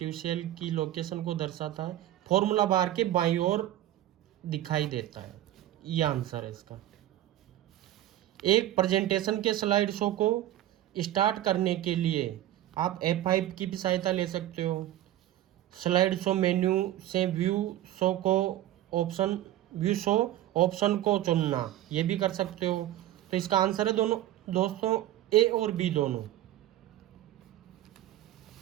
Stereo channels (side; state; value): left; quieter; 13.6 dB